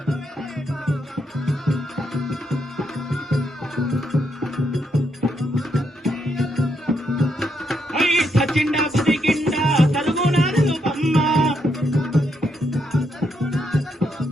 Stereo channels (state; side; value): normal; both; correlation 0.78